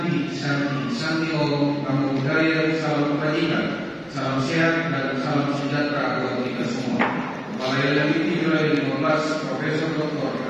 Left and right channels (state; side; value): identical; both; correlation 1.00